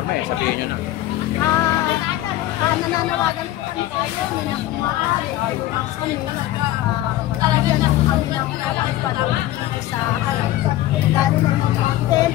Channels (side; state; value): right; quieter; 14.7 dB